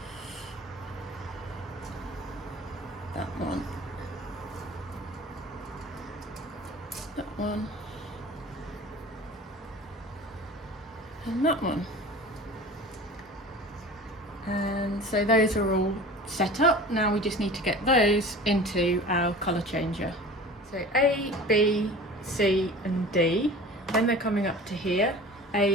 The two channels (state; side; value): normal; both; correlation 0.40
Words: that one, that one, and that one. And so those are all set up. Now we just need to get those into our colour changer. So A, B, C and D. Then they're coming up to here.